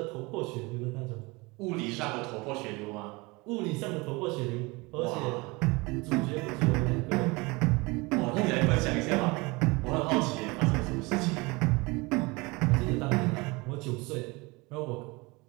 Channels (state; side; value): quieter; left; 25.0 dB